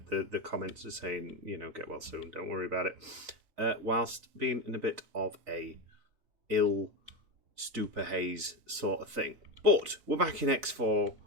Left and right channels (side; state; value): left; late; 3.9 ms